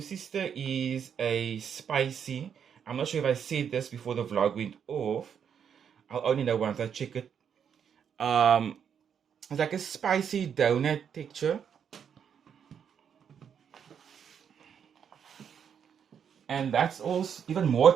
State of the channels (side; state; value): left; quieter; 7.8 dB